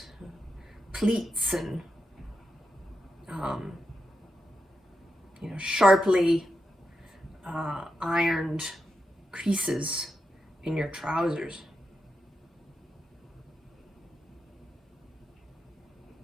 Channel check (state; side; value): normal; both; correlation 0.87